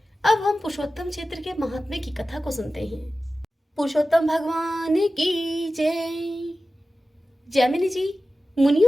अब हम पुरुषोत्तम क्षेत्र के महात्म्य की कथा को सुनते हैं। पुरुषोत्तम भगवान की जय। जैमिनी जी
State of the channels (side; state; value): both; normal; correlation 0.95